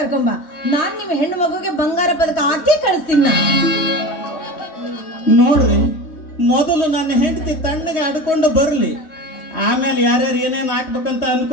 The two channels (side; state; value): right; late; 3.2 ms